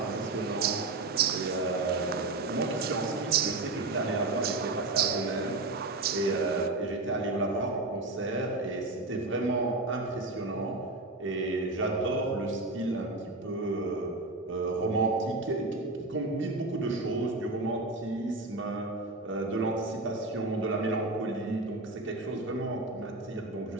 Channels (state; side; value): quieter; left; 3.1 dB